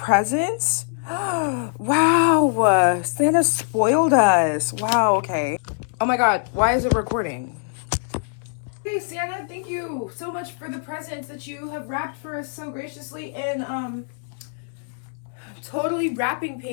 Wow, Santa spoiled us. Wow, okay. Oh my god, why is it recording? Hey Santa, thank you so much for the presents that you have wrapped for us so graciously in totally wrapping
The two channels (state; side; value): silent; right; 63 dB below the other